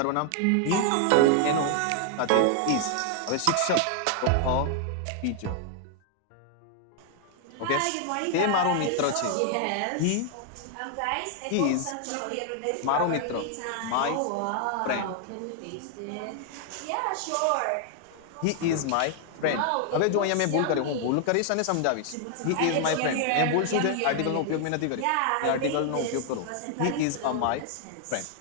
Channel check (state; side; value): different; both; correlation 0.00